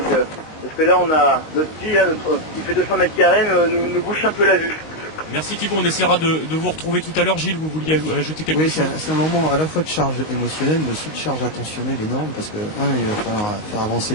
parce que là, on a notre ski, qui fait 200 mètres carrés, nous bouche un peu la vue. Merci Thibaut, on essaiera de vous retrouver tout à l'heure. Gilles, vous vouliez ajouter quelque Oui, chose? c'est un moment à la fois de charge émotionnelle, mais aussi de charge attentionnelle énorme, parce que, il va falloir faire avancer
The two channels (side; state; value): right; late; 23 ms